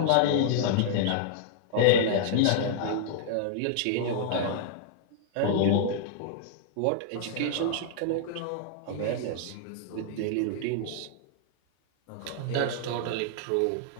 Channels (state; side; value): different; both; correlation -0.01